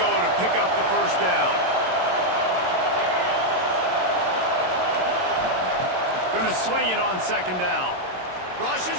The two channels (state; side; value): late; left; 22 ms